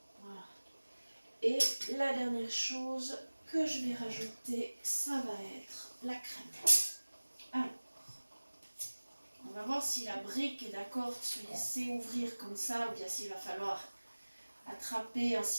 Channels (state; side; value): inverted; both; correlation -1.00